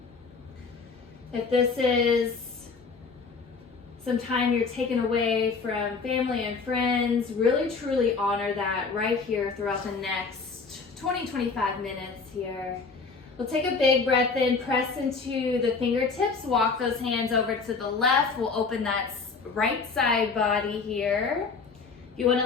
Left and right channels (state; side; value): quieter; right; 4.7 dB